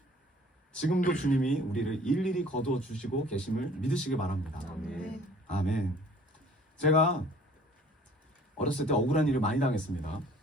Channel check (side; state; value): both; normal; correlation 0.53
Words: 지금도 주님이 우리를 일일이 거두어 주시고 계심을 믿으시길 바랍니다. 아멘. 아멘. 제가 어렸을 때 억울한 일을 많이 당했습니다.